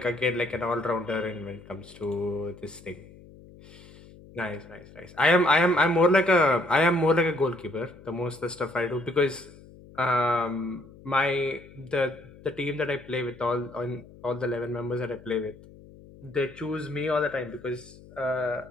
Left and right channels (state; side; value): noise; left; hum, 21 dB below the sound